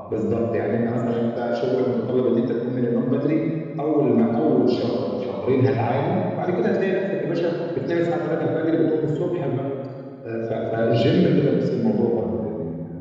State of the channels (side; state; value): both; identical; correlation 1.00